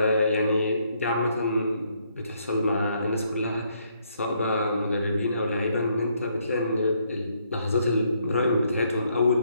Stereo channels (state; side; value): inverted; both; correlation -0.72